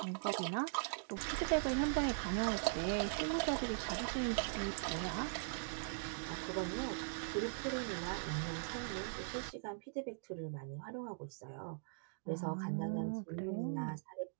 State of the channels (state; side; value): silent; left; digital silence